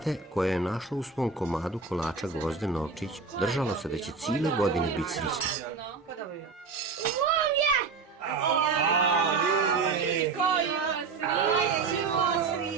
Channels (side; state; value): left; quieter; 4.8 dB